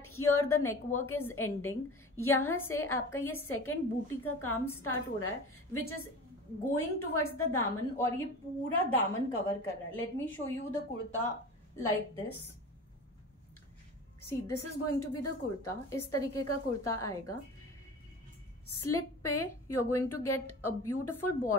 here the neckwork is ending, यहाँ से आपका ये second बूटी का काम स्टार्ट हो रहा है which is going towards the दामन, और ये पूरा दामन कवर कर रहा है. Let me show you the kurta like this. See, this is going to be the kurta. इस तरीके का कुर्ता आएगा. स्लिट पे you are going to get a beautiful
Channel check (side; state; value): both; normal; correlation 0.35